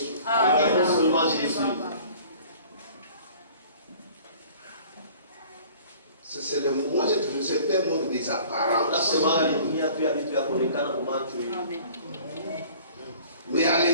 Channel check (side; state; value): both; inverted; correlation -0.48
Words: Regardons seulement Jésus. C'est le moi c'est un monde des apparences. Mais à